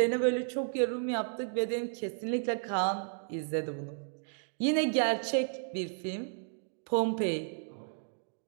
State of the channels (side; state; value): left; silent; digital silence